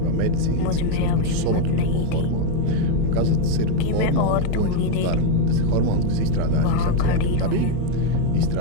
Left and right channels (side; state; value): both; different; correlation 0.02